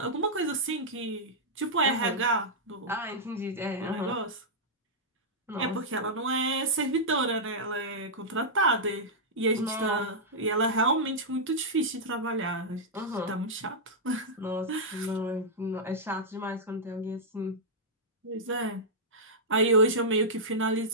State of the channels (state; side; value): normal; both; correlation -0.09